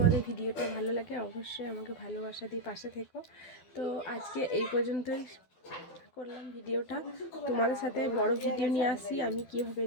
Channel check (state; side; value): late; right; 12 ms